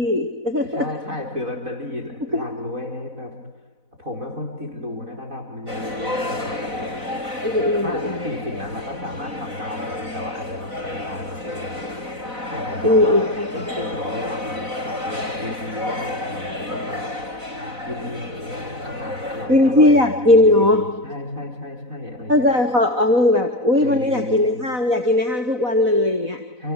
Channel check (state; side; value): late; left; 4.0 ms